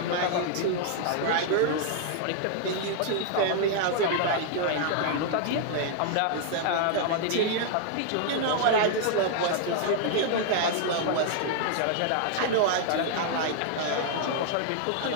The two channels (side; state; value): both; different; correlation -0.01